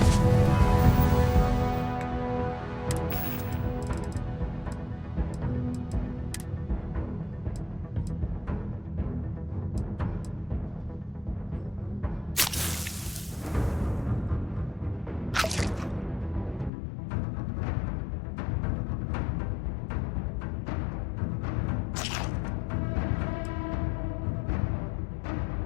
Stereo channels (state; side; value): drops out; right; at 16.7 s